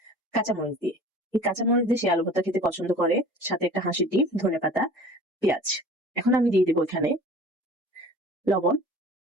কাঁচামরিচ দিয়ে। এই কাঁচামরিচ দিয়ে সে আলু ভর্তা খেতে পছন্দ করে, সাথে একটা হাঁসের ডিম, ধনেপাতা, পেঁয়াজ। এখন আমি দিয়ে দেবো এখানে লবণ।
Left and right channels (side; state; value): both; normal; correlation 0.43